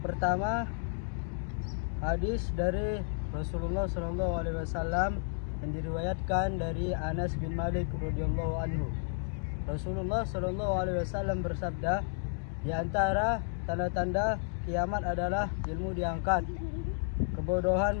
pertama, hadis dari Rasulullah SAW yang diriwayatkan dari Anas bin Malik radhiyallahu anhu. Rasulullah SAW bersabda, di antara tanda-tanda kiamat adalah ilmu diangkat, kebodohan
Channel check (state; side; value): silent; right; digital silence